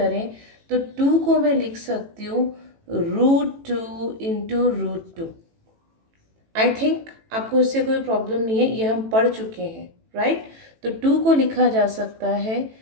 तो 2 को मैं लिख सकती हूँ √2 इंटू √2। आई थिंक आपको इससे कोई प्रॉब्लम नहीं है, ये हम पढ़ चुके हैं, राइट। तो 2 को लिखा जा सकता है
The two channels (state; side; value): late; left; 18 ms